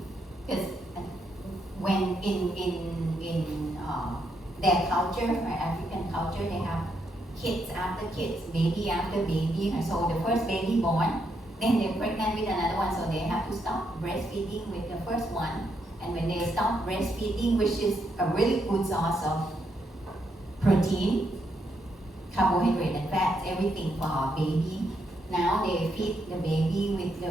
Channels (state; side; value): normal; both; correlation 0.78